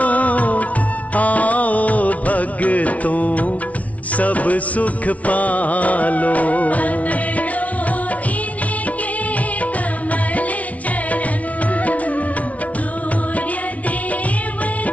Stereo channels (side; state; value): right; late; 0.067 ms